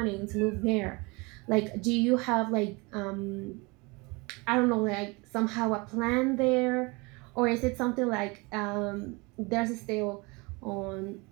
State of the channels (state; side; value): quieter; left; 26.9 dB